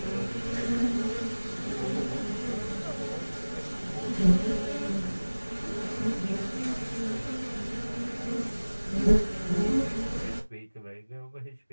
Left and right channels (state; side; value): inverted; both; correlation -1.00